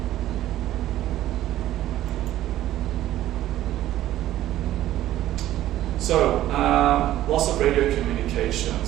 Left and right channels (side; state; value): left; quieter; 13.7 dB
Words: So, loss of radio